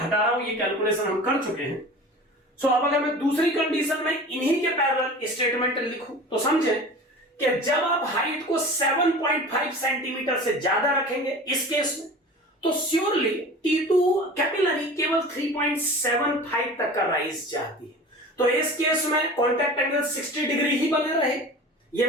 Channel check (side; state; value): both; normal; correlation 0.38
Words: रहा हूं, ये कैलकुलेशन हम कर चुके हैं। अब अगर मैं दूसरी कंडीशन में इन्हीं के पैरेलल स्टेटमेंट लिखूं तो समझें कि जब आप हाइट को 7.5 सेंटीमीटर से ज्यादा रखेंगे इस केस में तो श्योरली T2 कैपिलरी केवल 3.75 तक का राइज चाहती है। तो इस केस में कांटेक्ट एंगल 60 डिग्री ही बने रहे। ये